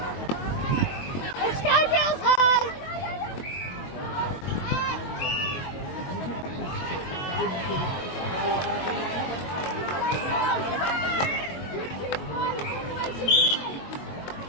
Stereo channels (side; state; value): right; late; 22 ms